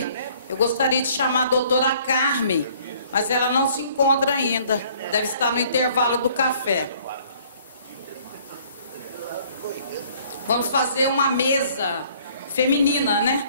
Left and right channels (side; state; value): both; inverted; correlation -0.58